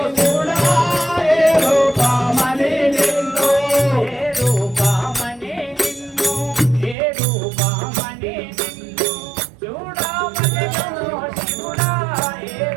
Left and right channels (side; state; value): left; drops out; at 7.0 s